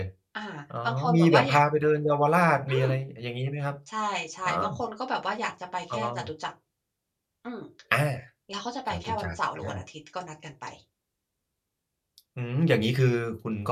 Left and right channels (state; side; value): identical; both; correlation 1.00